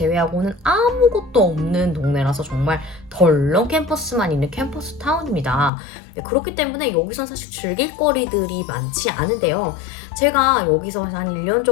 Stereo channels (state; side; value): drops out; right; at 5.7 s